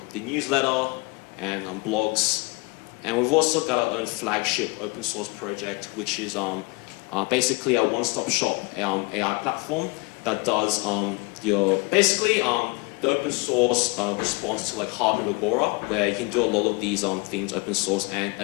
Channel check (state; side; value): quieter; right; 27.4 dB